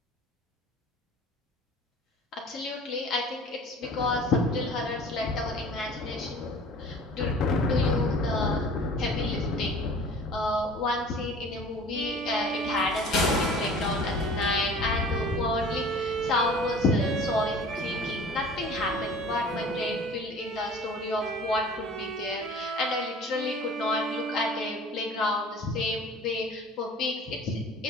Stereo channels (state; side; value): normal; both; correlation 0.44